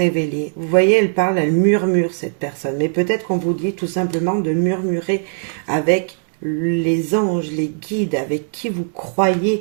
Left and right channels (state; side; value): silent; left; digital silence